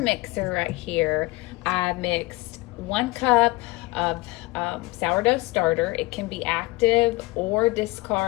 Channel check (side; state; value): right; quieter; 21.7 dB